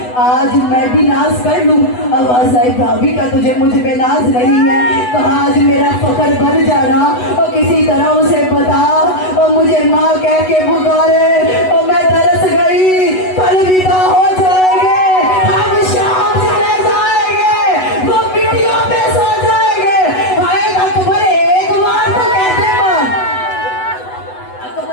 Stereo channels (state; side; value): late; right; 8.1 ms